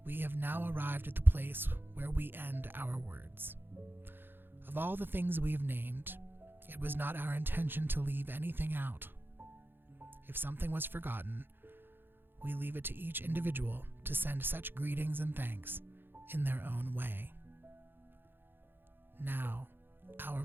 We have now arrived at the place where we end our words. Of all the things we have named, it was not our intention to leave anything out. If something was forgotten, we leave it to each individual to send such greetings and thanks in their own way. Now, our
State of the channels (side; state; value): left; late; 0.10 ms